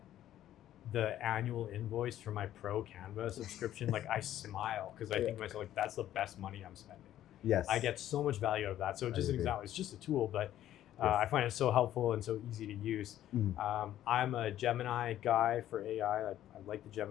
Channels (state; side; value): quieter; right; 12.4 dB